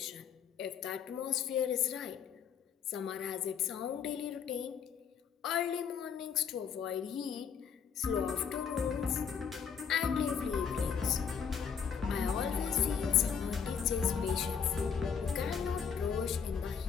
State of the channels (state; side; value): quieter; right; 7.0 dB